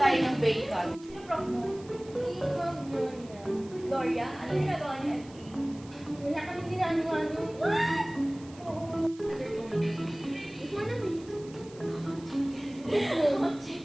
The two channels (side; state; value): right; noise; hiss, 23 dB below the sound